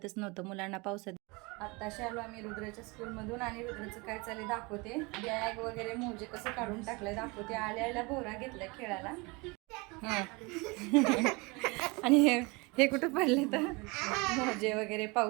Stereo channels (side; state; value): left; quieter; 26.8 dB